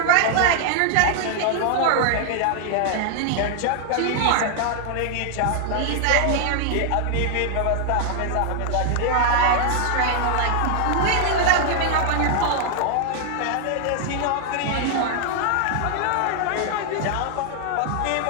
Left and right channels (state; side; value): different; both; correlation 0.00